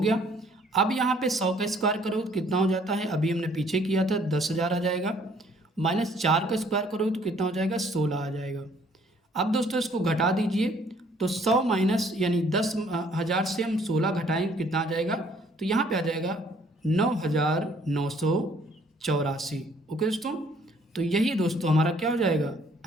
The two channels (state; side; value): normal; both; correlation 0.61